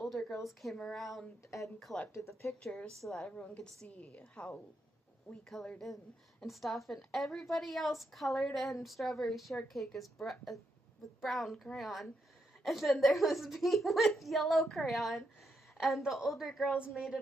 girls came around and collected the pictures so that everyone could see how we colored in and stuff. And everybody else colored in Strawberry Shortcake with brown crayon. And then there was me with yellow crayon. And the older girls made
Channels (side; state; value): both; normal; correlation 0.81